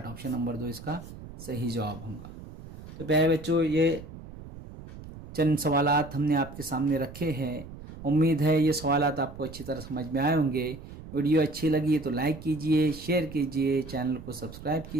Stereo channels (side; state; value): right; noise; rumble, 15 dB below the sound